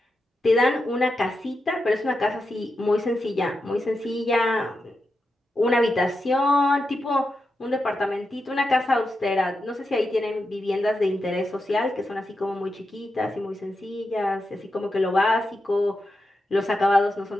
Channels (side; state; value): both; normal; correlation 0.88